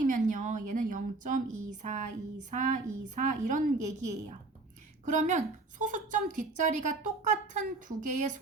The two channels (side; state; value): left; quieter; 3.5 dB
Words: 얘는 0.242424 이런 얘기예요. 그러면 소수점 뒷자리가 똑같은 두 개의